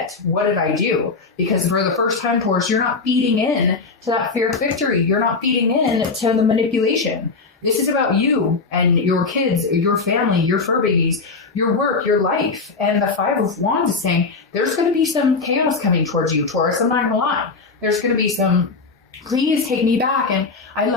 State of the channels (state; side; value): quieter; right; 4.3 dB